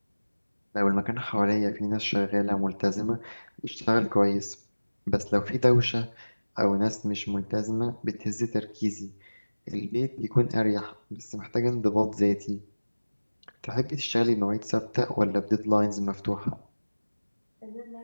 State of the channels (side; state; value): both; inverted; correlation -1.00